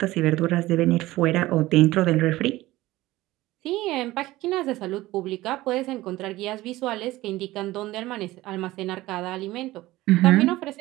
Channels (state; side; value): quieter; left; 17.6 dB